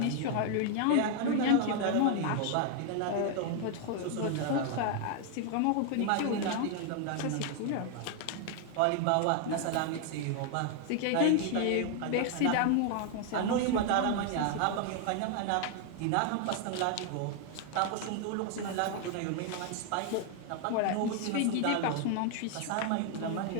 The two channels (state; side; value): different; both; correlation 0.00